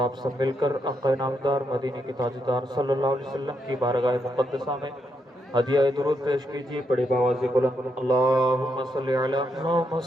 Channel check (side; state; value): both; normal; correlation 0.80